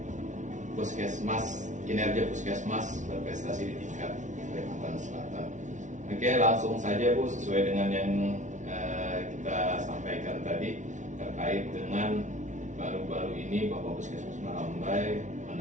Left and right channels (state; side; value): late; left; 0.36 ms